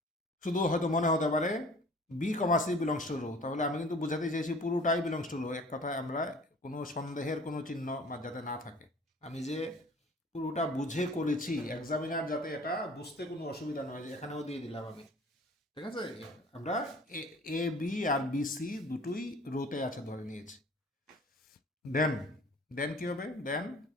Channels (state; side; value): normal; both; correlation 0.48